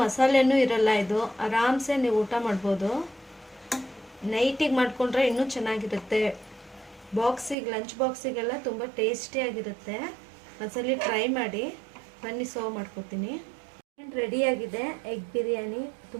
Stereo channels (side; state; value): left; drops out; at 7.6 s